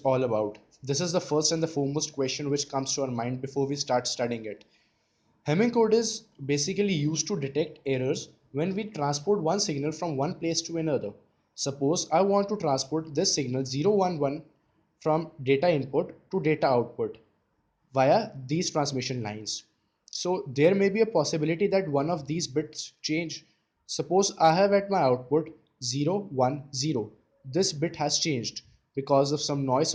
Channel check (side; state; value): both; identical; correlation 1.00